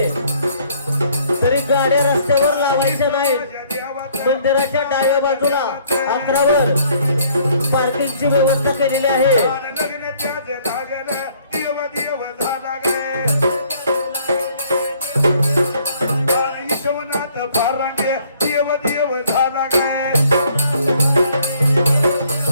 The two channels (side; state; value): both; inverted; correlation -0.62